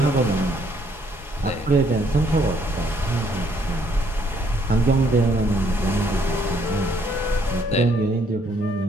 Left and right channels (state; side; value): normal; both; correlation 0.67